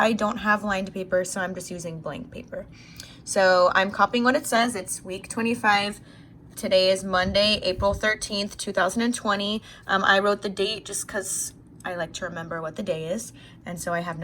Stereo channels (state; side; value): identical; both; correlation 1.00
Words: don't have lined paper, so I'm just using blank paper. So I'm copying what it says. It's week 25. Today is Monday, April 13th, 2020. I wrote the date just because I like to remember what the day is. And so I have